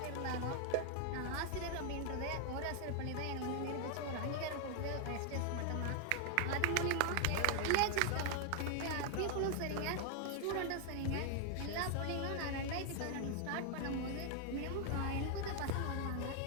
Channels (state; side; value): different; both; correlation 0.00